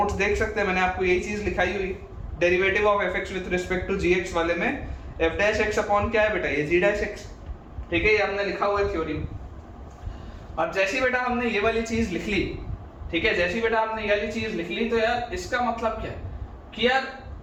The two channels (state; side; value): identical; both; correlation 1.00